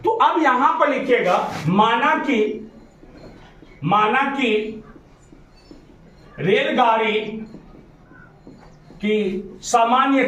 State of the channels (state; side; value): identical; both; correlation 1.00